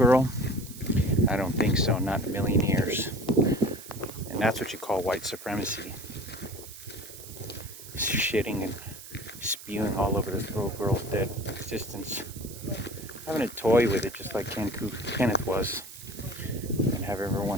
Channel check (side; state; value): right; noise; hiss, 15 dB below the sound